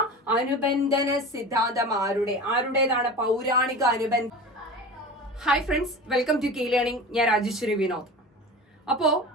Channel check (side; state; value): both; normal; correlation 0.33